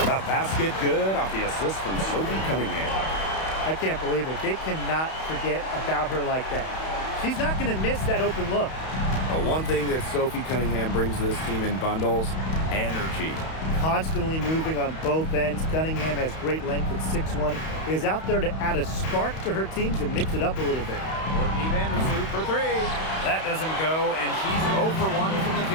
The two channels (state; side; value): late; right; 31 ms